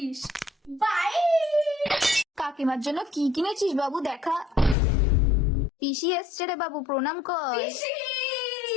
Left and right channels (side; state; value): right; drops out; at 4.8 s